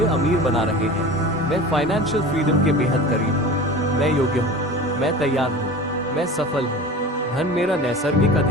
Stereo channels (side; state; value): both; normal; correlation 0.35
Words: अमीर बना रहे हैं। मैं फाइनेंशियल फ्रीडम के बेहद करीब हूँ। मैं योग्य हूँ। मैं तैयार हूँ। मैं सफल हूँ। धन मेरा नैसर्गिक